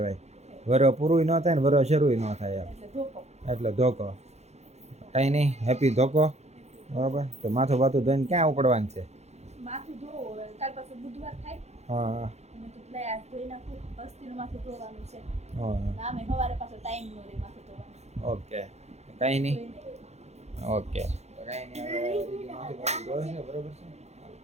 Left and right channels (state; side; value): late; left; 0.32 ms